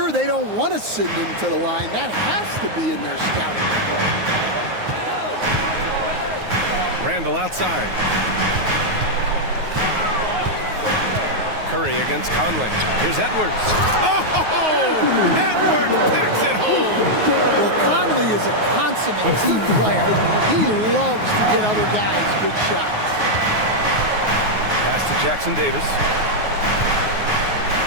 they don't want to send him to the line. That has to be in their scouting report. Randall outside. Curry against Conley. Here's Edwards. Oh! Edwards packs it home. Well, Conley is a consummate team player. He loves to get other guys good shots. Pass to Jackson Davis.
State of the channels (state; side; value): late; left; 9.5 ms